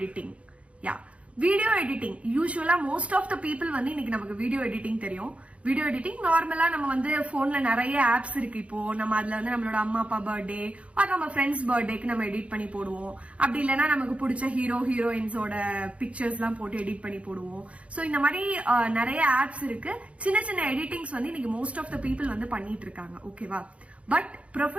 Video editing யூஸ்வலா மோஸ்ட் ஆஃப் த பீப்புள் வந்து இன்னைக்கு நமக்கு வீடியோ எடிட்டிங் தெரியும். வீடியோ எடிட்டிங் நார்மலா நம்ம வந்து போன்ல நிறைய ஆப்ஸ் இருக்கு. இப்போ நம்ம அதுல வந்து நம்மளோட அம்மா அப்பா பர்த்டே ஆர் நம்ம ஃப்ரெண்ட்ஸ் பர்த்டேக்கு நம்ம எடிட் பண்ணி போடுவோம். அப்படி இல்லைன்னா நமக்கு பிடிச்ச ஹீரோ ஹீரோயின்ஸோட பிக்சர்ஸ் எல்லாம் போட்டு எடிட் பண்ணி போடுவோம். சோ இந்த மாதிரி நிறைய ஆப்ஸ் இருக்கு. சின்ன சின்ன எடிட்டிங்ஸ் வந்து இன்னைக்கு மோஸ்ட் ஆஃப் த பீப்புள் வந்து பண்ணிட்டு இருக்காங்க. ஓகேவா? பட்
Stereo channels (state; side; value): late; left; 0.063 ms